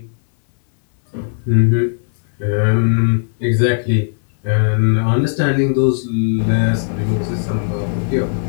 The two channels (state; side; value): silent; right; digital silence